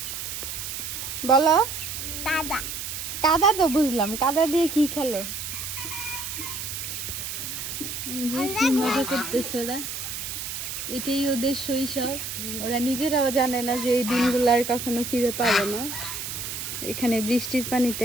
বলো? কাদা। কাদা তো বুঝলাম, কাদা দিয়ে কি খেলো? কি মজা করতেছে ওরা, এটাই ওদের শৈশব। ওরা নিজেরাও জানে না যে এই দিনগুলো আর কখনো ফিরে পাবে না। এখানে বৃষ্টির পানিতে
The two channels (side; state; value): right; noise; hiss, 6 dB below the sound